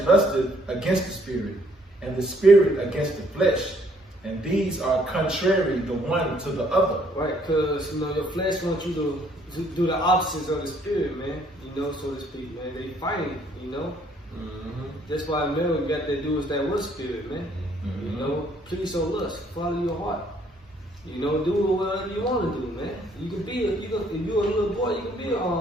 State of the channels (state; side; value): normal; both; correlation 0.65